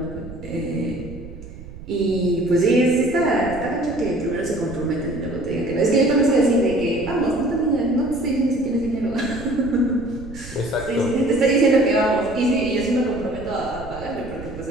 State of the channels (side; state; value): right; noise; rumble, 14 dB below the sound